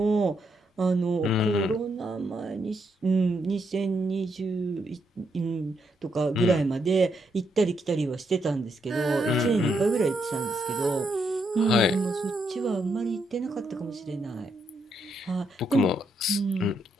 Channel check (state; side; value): normal; both; correlation 0.78